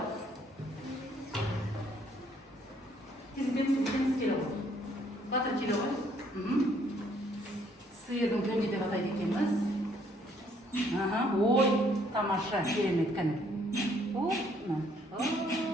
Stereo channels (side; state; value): both; normal; correlation 0.65